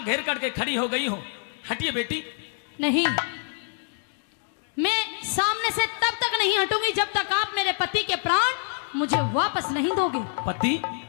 घेर करके खड़ी हो गई हो? हटिए बेटी। नहीं, मैं सामने से तब तक नहीं हटूंगी जब तक आप मेरे पति के प्राण मुझे वापस नहीं दोगे। पति?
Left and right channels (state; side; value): silent; right; digital silence